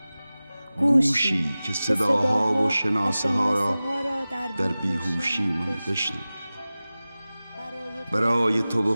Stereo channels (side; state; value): both; inverted; correlation -0.97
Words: گوشی که صداها و شناسه ها را در بیهوشی من بشنود. برای تو و